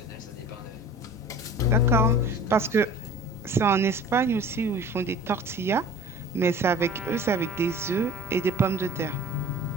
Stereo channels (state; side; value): normal; both; correlation 0.43